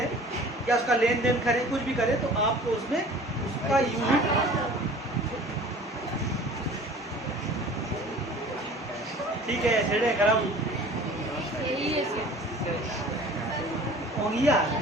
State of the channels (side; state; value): both; normal; correlation 0.45